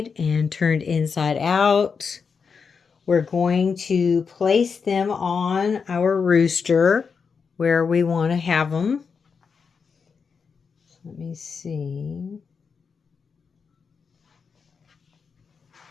and turned inside out, we're going to place them on our rooster where we want to have them. Let me see.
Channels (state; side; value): quieter; right; 5.7 dB